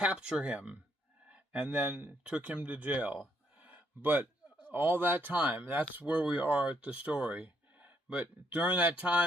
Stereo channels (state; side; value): normal; both; correlation 0.72